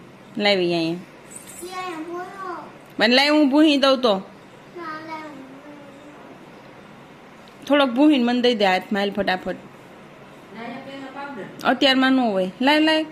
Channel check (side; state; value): both; identical; correlation 1.00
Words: લાવી અહીંયા મને લાવી, હું ભૂહી દઉં તો થોડોક ભૂહીને મને દઈ દે હાથમાં, હાલ ફટાફટ. અત્યારમાં ન હોય, લાય લાય.